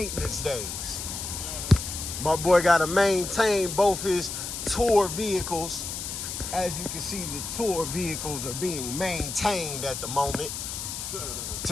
days. My boy got to maintain both his tour vehicles. As you can see, the tour vehicles are being maintained at the moment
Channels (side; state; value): left; noise; hiss, 6 dB below the sound